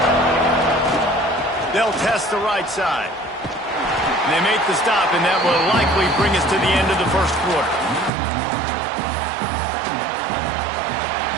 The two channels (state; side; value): drops out; left; at 8.1 s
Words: They'll test the right side. And they make the stop, and that will likely bring us to the end of the first quarter.